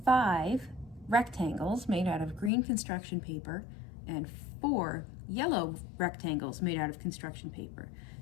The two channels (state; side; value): drops out; right; at 2.5 s